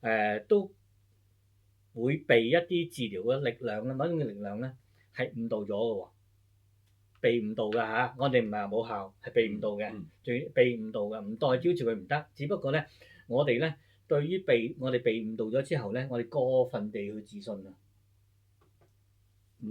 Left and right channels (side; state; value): both; identical; correlation 1.00